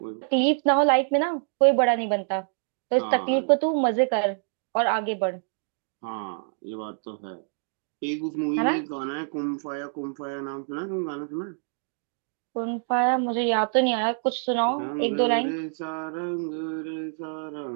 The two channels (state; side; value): silent; left; digital silence